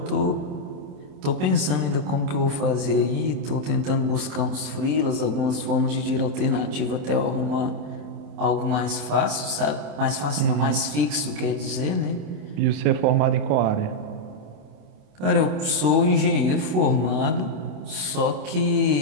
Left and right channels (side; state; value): left; late; 27 ms